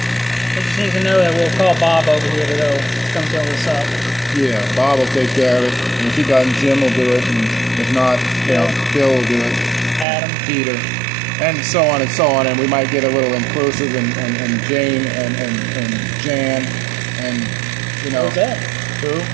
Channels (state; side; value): drops out; left; at 10.1 s